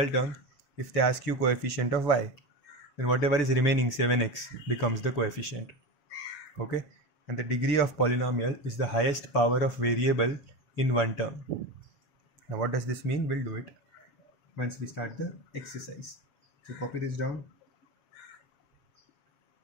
term, if they ask you coefficient of y, then whatever is remaining 7x becomes the coefficient. Okay. And the degree of polynomial is the highest power of variable in one term. Now what does this mean? We'll do it once we start the exercise. So copy this down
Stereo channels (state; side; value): late; right; 7.2 ms